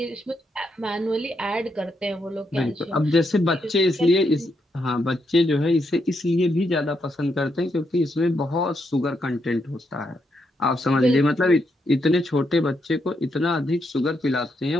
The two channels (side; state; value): both; normal; correlation 0.80